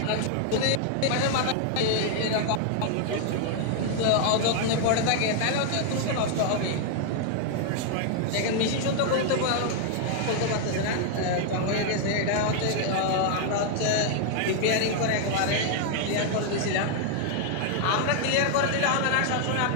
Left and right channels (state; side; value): different; both; correlation 0.00